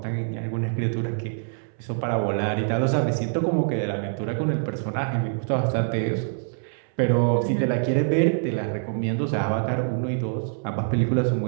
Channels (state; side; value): silent; left; 62 dB below the other